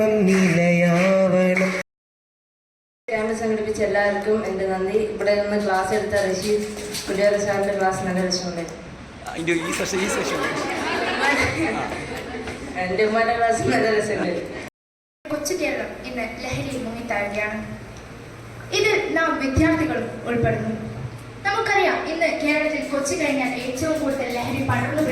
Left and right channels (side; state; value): both; identical; correlation 1.00